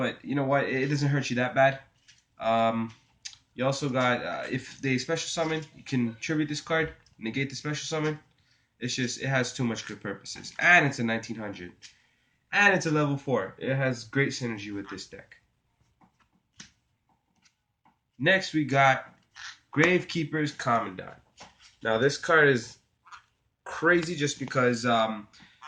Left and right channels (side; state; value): both; identical; correlation 1.00